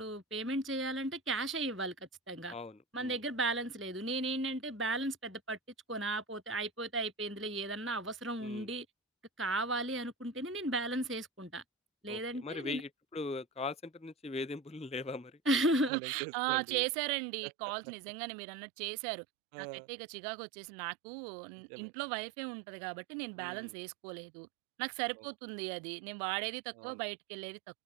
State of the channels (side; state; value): left; drops out; at 15.9 s